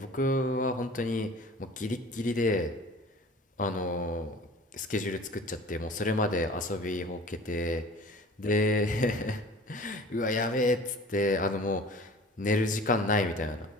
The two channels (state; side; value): normal; both; correlation 0.43